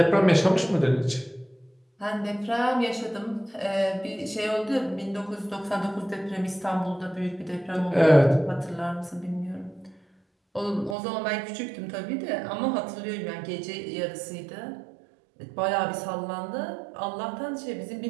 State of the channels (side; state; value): left; drops out; at 11.0 s